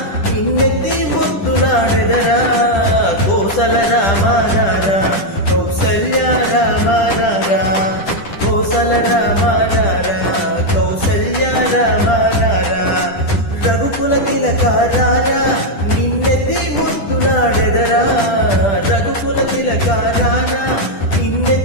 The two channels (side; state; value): right; late; 10 ms